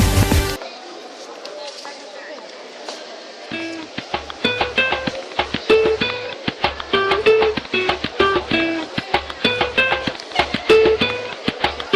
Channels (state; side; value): identical; both; correlation 1.00